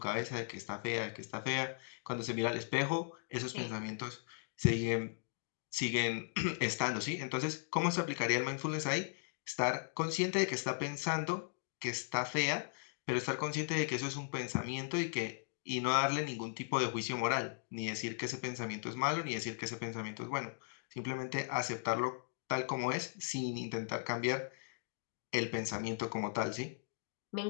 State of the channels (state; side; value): silent; right; digital silence